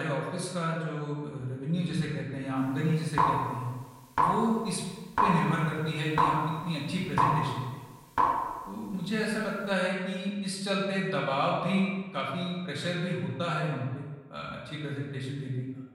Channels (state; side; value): identical; both; correlation 1.00